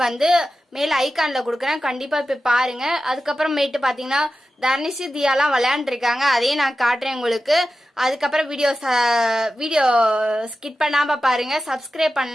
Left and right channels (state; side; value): normal; both; correlation 0.93